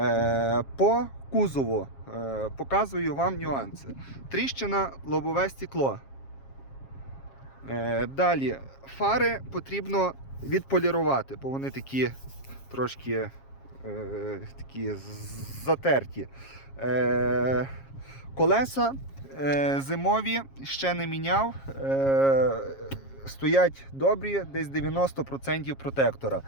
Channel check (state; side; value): late; right; 7.4 ms